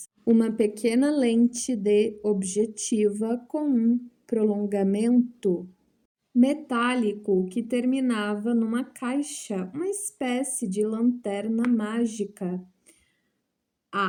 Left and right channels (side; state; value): both; identical; correlation 1.00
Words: Uma pequena lente de objetiva com um prolongamento metálico que terminava numa caixa, uma espécie de lanterna mágica.